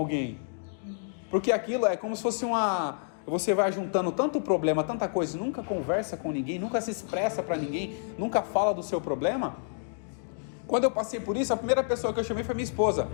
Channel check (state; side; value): silent; right; digital silence